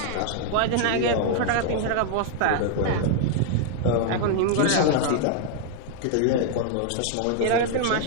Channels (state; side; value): different; both; correlation 0.00